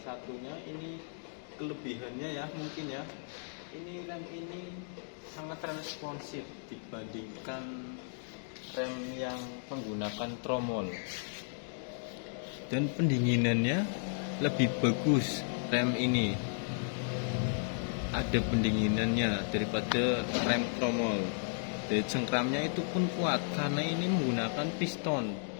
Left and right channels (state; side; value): silent; right; digital silence